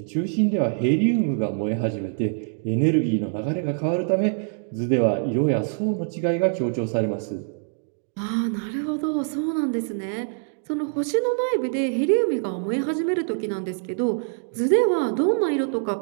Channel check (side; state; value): left; silent; digital silence